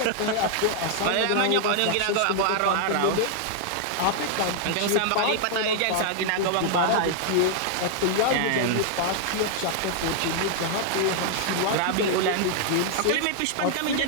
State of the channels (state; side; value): different; both; correlation 0.00